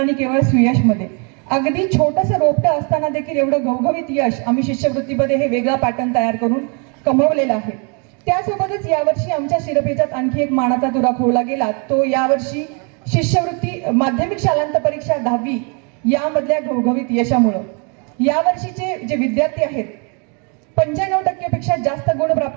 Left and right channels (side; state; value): left; quieter; 35.5 dB